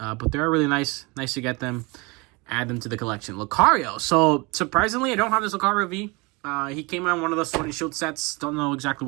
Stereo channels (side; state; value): left; quieter; 26.9 dB